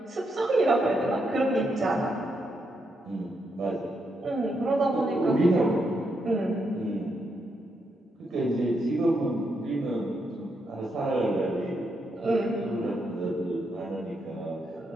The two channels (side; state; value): both; normal; correlation 0.80